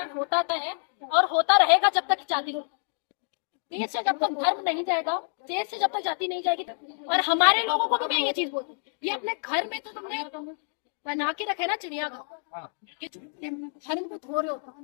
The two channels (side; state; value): right; silent; digital silence